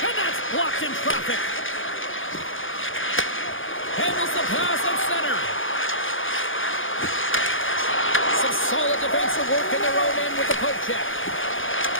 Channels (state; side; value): late; right; 0.58 ms